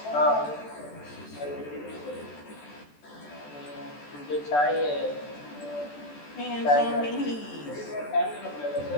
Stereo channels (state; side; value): late; right; 14 ms